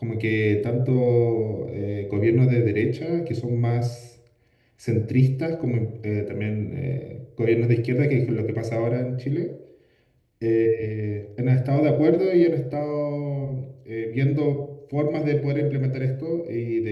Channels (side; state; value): both; identical; correlation 1.00